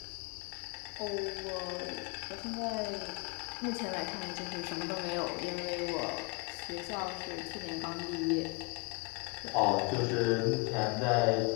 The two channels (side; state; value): right; quieter; 31.8 dB